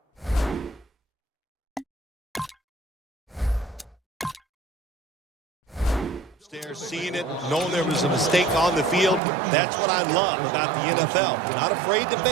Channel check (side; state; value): left; drops out; at 9.2 s